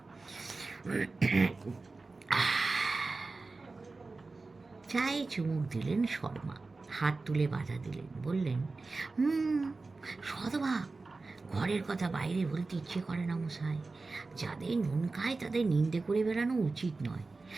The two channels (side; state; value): left; quieter; 3.7 dB